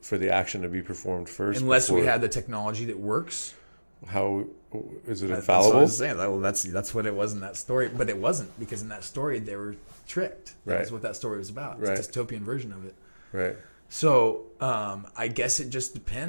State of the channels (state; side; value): inverted; both; correlation -1.00